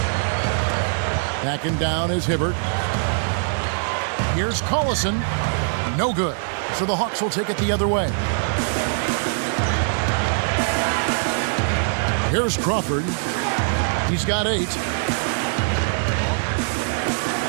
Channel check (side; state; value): left; silent; digital silence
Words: Backing down is Hibbert. Here's Collison. No good. So the Hawks will take it the other way. Here's Crawford. He's got 8.